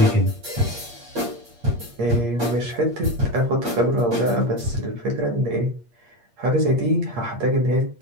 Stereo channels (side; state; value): left; late; 8.5 ms